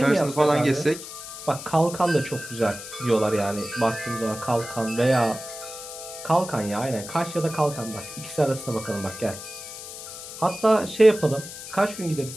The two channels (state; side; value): noise; left; hiss, 11 dB below the sound